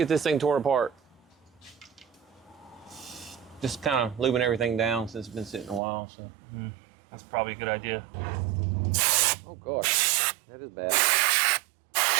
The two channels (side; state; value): left; drops out; at 5.8 s